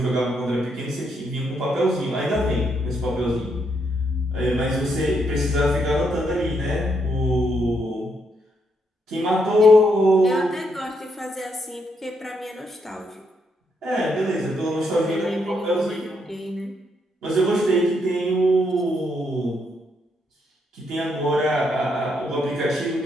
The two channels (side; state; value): both; normal; correlation 0.76